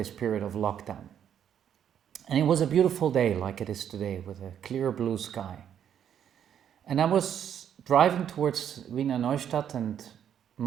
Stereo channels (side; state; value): left; quieter; 9.2 dB